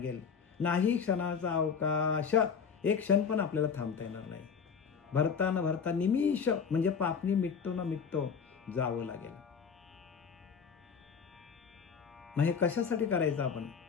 नाही क्षणाचा अवकाश, एक क्षण पण आपल्याला थांबता येणार नाही. भरता न भरता निमिष म्हणजे पापणी मिटतो न मिटतो जावं लागेल. मग हे कशासाठी करायचं आपण,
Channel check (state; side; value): quieter; right; 6.3 dB